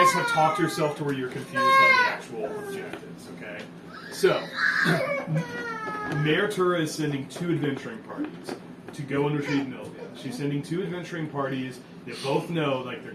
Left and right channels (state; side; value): identical; both; correlation 1.00